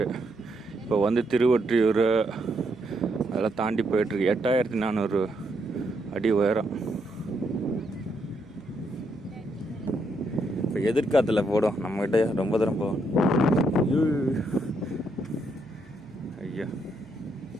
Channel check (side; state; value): right; noise; hum, 26 dB below the sound